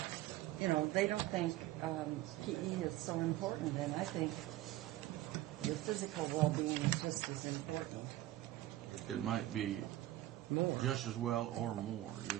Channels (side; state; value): left; quieter; 15.9 dB